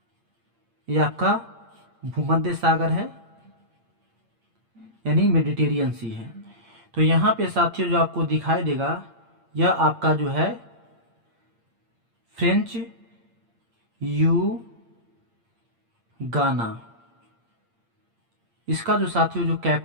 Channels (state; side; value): late; left; 8.7 ms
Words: ये आपका भूमध्य सागर है यानी मेडिटेरियन सी है। तो यहाँ पे साथियों जो आपको दिखाई देगा यह आपका जो है फ्रेंच यू गाना। इसका जो साथियों जो